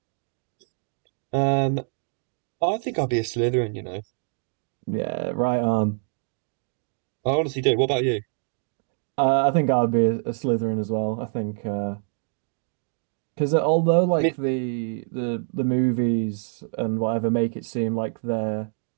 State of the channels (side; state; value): left; silent; digital silence